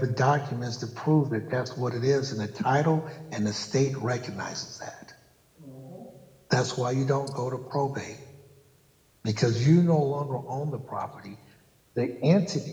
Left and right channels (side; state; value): both; identical; correlation 1.00